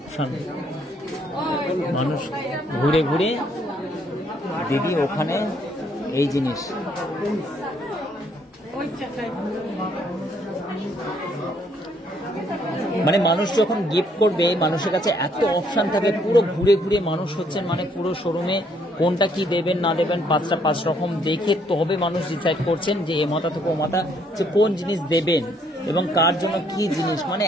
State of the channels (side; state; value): both; normal; correlation 0.68